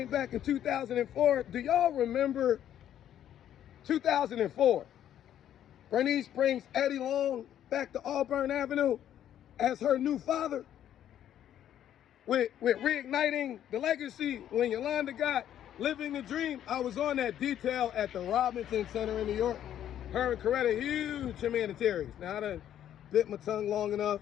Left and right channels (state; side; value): quieter; right; 10.8 dB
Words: back in 2004. Do y'all remember 2004? Bernice brings Eddie Long back to Auburn Avenue as her new father, with reigniting the legacy. When Yolanda got Living the Dream, I was on that detail at the Robinson Center in New York. Her and Coretta, huge humanitarians. Now, I done bit my tongue long enough